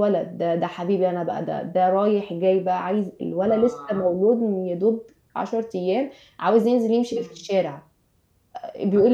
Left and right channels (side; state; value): both; identical; correlation 1.00